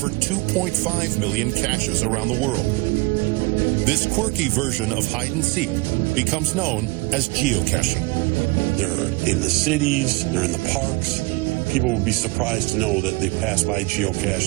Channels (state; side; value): quieter; left; 24.6 dB